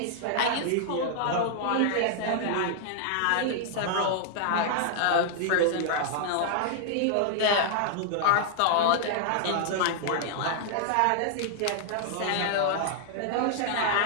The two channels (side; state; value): both; different; correlation -0.01